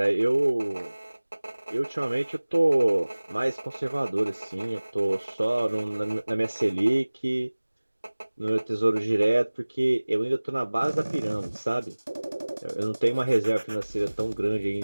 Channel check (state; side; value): inverted; both; correlation -1.00